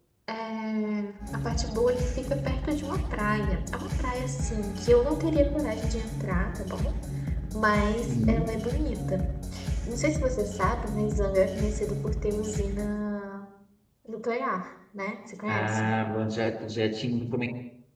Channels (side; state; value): both; identical; correlation 1.00